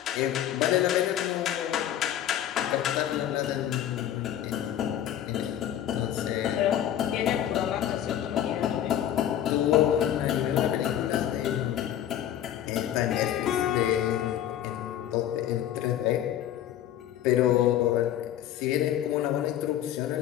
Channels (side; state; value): right; quieter; 11.2 dB